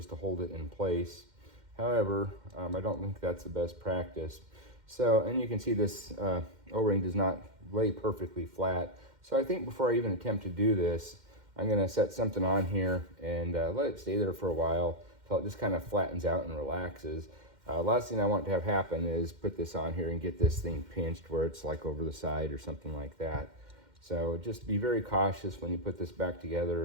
to hold it in place. However, I don't think that's the best practice. So, and you can see this O-ring does not lay perfectly flat. So I think before I even attempt to do this, I'm gonna set something on here and let it stay there for a while until it just kind of flattens out and relaxes. Last thing I want to have happen is put this on here and get this thing pinched where it's like over the side or something like that. So just be very cautious when you put this back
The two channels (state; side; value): late; left; 2.1 ms